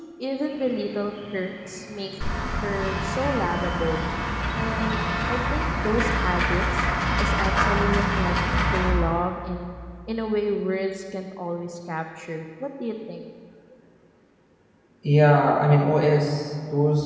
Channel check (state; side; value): identical; both; correlation 1.00